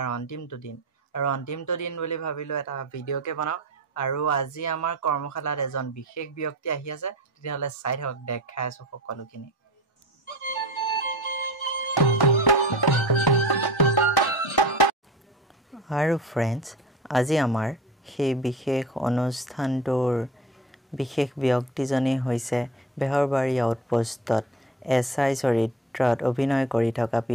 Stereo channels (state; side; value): normal; both; correlation 0.35